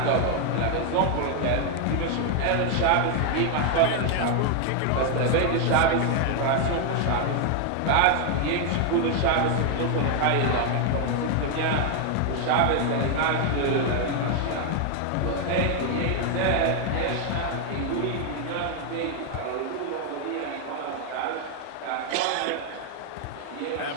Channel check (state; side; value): different; both; correlation 0.00